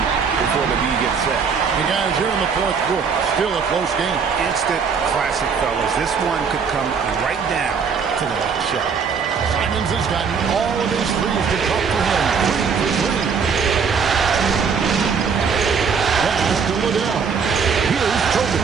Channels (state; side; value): quieter; left; 6.0 dB